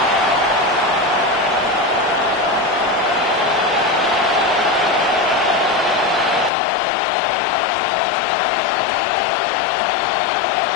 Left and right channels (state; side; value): drops out; right; at 6.5 s